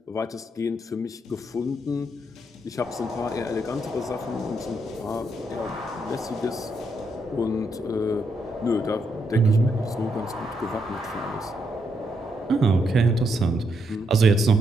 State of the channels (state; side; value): normal; both; correlation 0.78